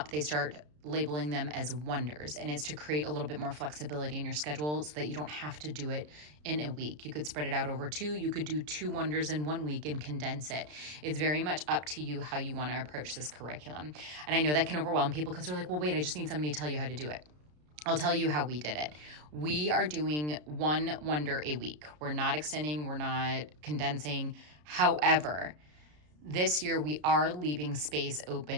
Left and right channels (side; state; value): left; late; 33 ms